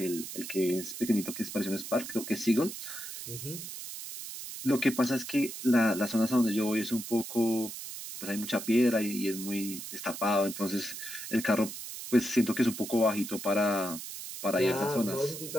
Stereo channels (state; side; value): noise; right; hiss, 9 dB below the sound